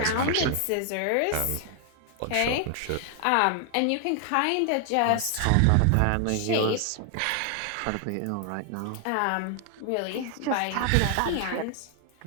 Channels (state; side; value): different; both; correlation 0.00